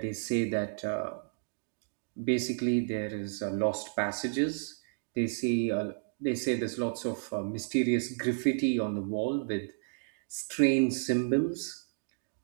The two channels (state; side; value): silent; left; digital silence